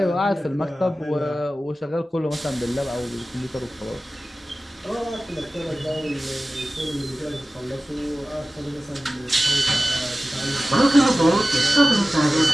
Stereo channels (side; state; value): both; normal; correlation 0.96